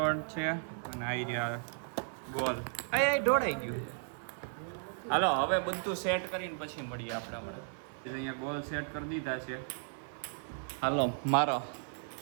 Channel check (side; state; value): left; silent; digital silence